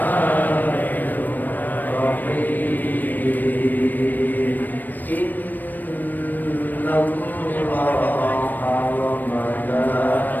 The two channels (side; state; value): right; late; 0.088 ms